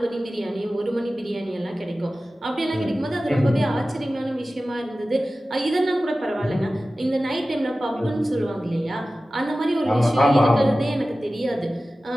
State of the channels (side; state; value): both; normal; correlation 0.96